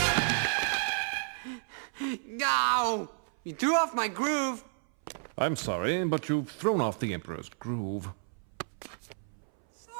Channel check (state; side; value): silent; left; 57 dB below the other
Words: No! You threw off my groove! I'm sorry, but you've thrown off the Emperor's groove.